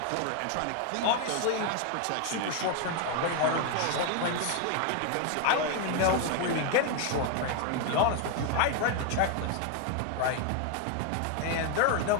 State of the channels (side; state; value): both; different; correlation 0.01